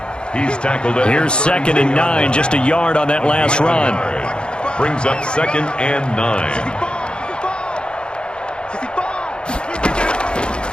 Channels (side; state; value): right; late; 0.052 ms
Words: He's tackled. Here's 2nd and 9, just a yard on that last run. Brings up 2nd and 9.